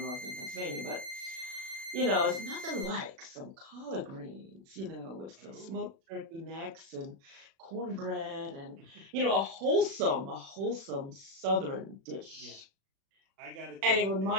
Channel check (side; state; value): left; late; 36 ms